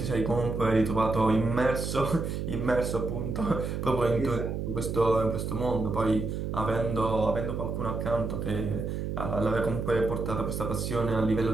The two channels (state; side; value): noise; right; hum, 3 dB below the sound